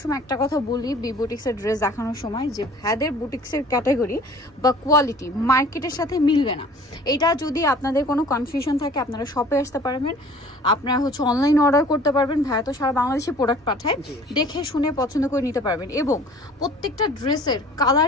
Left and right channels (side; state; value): both; normal; correlation 0.49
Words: একটা কথা বলি বি বুটিক্সের ড্রেস দেখানোর সময়, যে ভাইদের বুটিক্সের ক্যাটাগরি বা কোয়ালিটি মার্কেটের সাথে মিলবে না। এটা যদি আপনাদের কোনো কনফিউশন থাকে আপনারা শপে আসতে পারবেন, আপনারা অনলাইন অর্ডার করতে পারবেন। ভাইয়া তো সারা বাংলাদেশে প্রোডাক্ট পাঠায়, দেখে শুনে পছন্দ করে নিতে পারবেন। এবং প্রত্যেকটা ড্রেসের